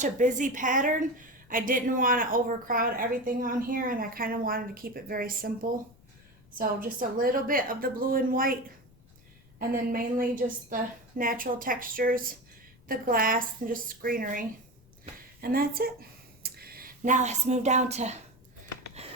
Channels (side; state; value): left; noise; rumble, 27 dB below the sound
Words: a busy pattern, I didn't want to overcrowd everything on here, and I kind of wanted to keep it very simple. So just a little bit of the blue and white, and then mainly just the natural textures, the glass, and just greenery. And that's it. Now let's move down to,